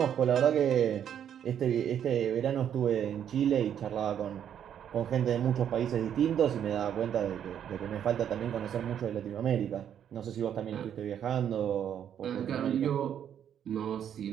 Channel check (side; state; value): left; quieter; 9.3 dB